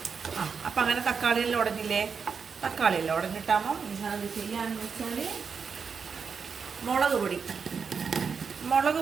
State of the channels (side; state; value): left; quieter; 5.9 dB